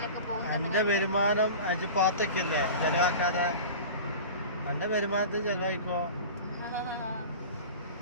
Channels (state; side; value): inverted; both; correlation -0.35